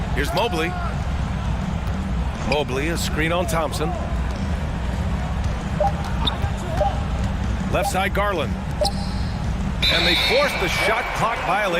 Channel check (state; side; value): identical; both; correlation 1.00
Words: Here's Mobley. Mobley, a screen on Thompson. Left side, Garland. And they force the shot clock